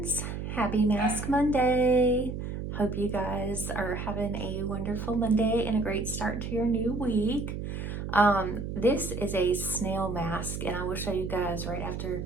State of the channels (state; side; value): noise; right; hum, 5 dB below the sound